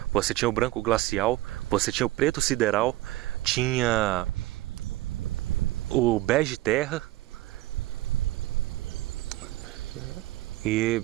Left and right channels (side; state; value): left; quieter; 17.0 dB